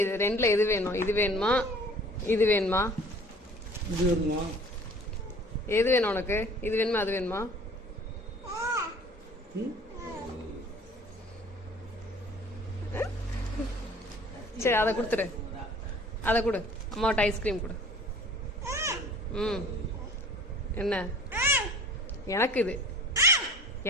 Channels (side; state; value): both; normal; correlation 0.48